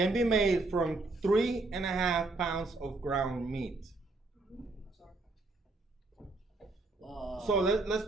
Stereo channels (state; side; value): quieter; left; 3.2 dB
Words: be made from 3.5 pounds of ground meat? So